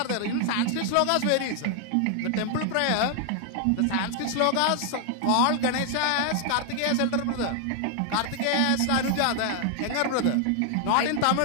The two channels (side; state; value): both; different; correlation 0.00